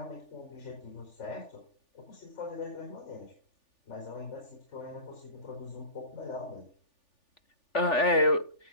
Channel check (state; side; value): late; right; 3.4 ms